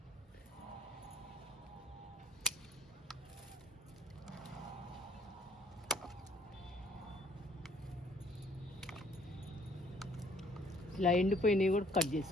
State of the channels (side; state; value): both; normal; correlation 0.59